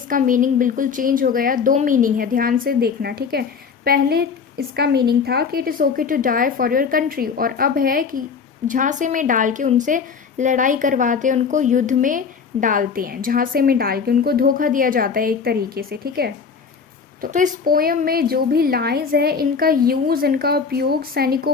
मीनिंग बिल्कुल चेंज हो गया। दो मीनिंग है, ध्यान से देखना। ठीक है, पहले इसका मीनिंग था कि it is okay to die for your country, और अब है कि झांसे में डाल के उनसे लड़ाई करवाते हैं, उनको युद्ध में डालते हैं, झांसे में डाल के उनको धोखा दिया जाता है एक तरीके से। ठीक है, तो इस पोयम में जो भी लाइंस है इनका यूज़, इनका उपयोग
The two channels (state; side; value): quieter; right; 5.9 dB